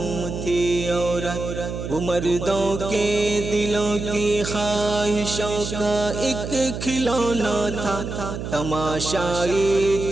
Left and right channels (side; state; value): right; noise; hum, 6 dB below the sound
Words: تھی عورت۔ وہ مردوں کے دلوں کی خواہشوں کا ایک کھلونا تھا، تماشائی